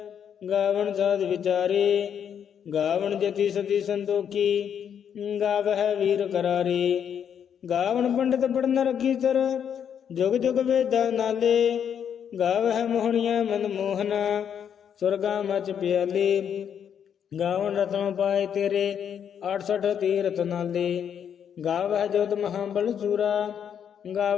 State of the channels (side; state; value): right; quieter; 8.4 dB